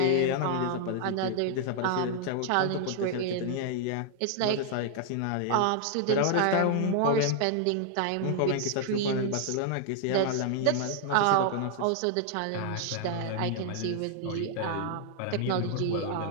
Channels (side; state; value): both; different; correlation 0.00